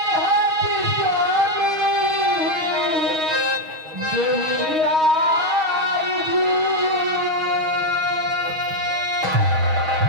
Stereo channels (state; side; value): late; left; 6.3 ms